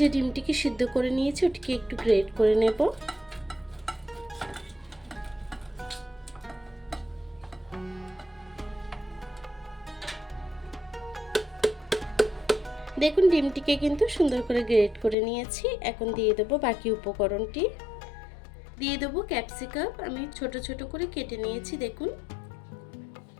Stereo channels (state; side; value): drops out; right; at 15.2 s